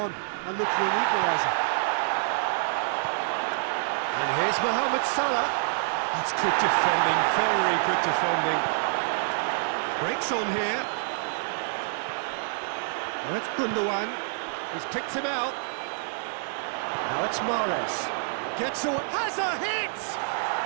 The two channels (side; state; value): left; silent; digital silence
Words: and look for an equaliser. And here's Mohamed Salah. That's good defending, very good defending. Breaks on here. Now it's Gundogan. He's picked him out. Now it's Mahrez. Gets away. Has a hit!